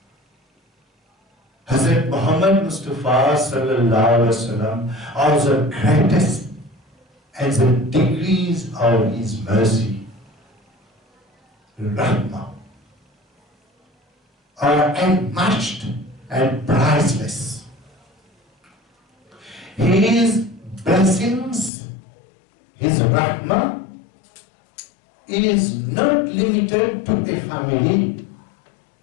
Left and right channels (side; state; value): right; drops out; at 21.7 s